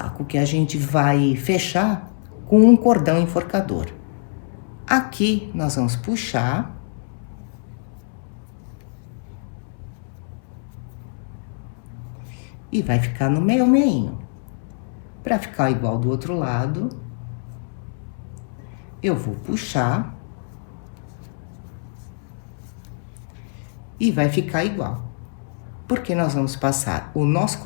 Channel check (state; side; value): silent; right; 63 dB below the other